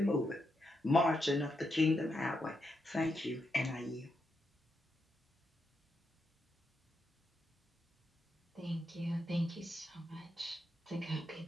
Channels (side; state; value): both; normal; correlation 0.83